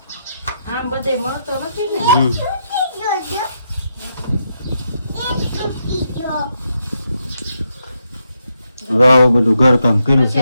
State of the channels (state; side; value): inverted; both; correlation -0.80